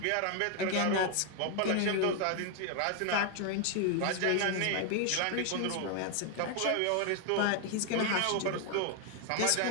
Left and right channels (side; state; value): both; different; correlation 0.00